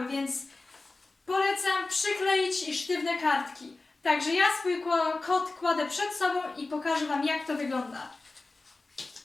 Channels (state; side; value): quieter; right; 3.4 dB